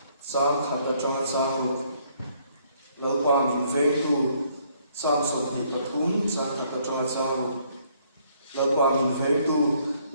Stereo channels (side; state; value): both; inverted; correlation -0.67